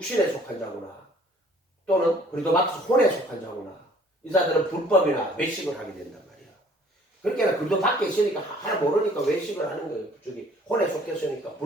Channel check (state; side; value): normal; both; correlation 0.56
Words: 속한 자구나. 또는 그래도 밖에서 혼에 속한 자구나. 이 사람들은 불법이나 외식을 하게 된단 말이야. 그러니까 그래도 밖에 있으니까 하나 모르니까 외식을 하는 거예요. 저기 혼에 속했으니까